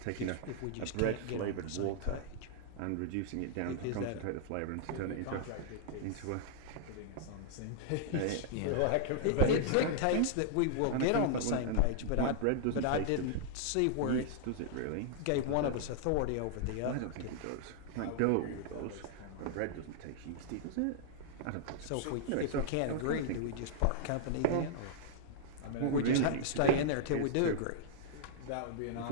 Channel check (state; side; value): different; both; correlation -0.01